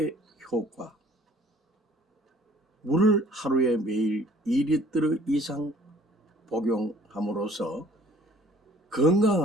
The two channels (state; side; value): normal; both; correlation 0.54